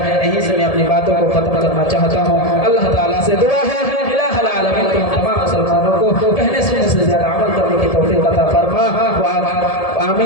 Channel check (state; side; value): late; right; 1.7 ms